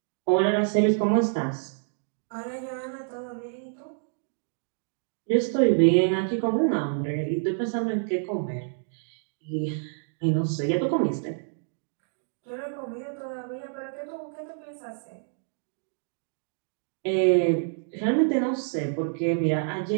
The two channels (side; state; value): left; silent; digital silence